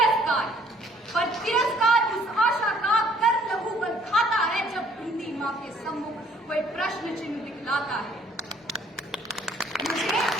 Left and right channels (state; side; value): normal; both; correlation 0.60